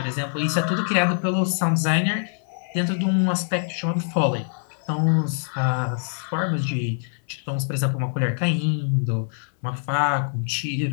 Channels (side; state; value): right; silent; 58 dB below the other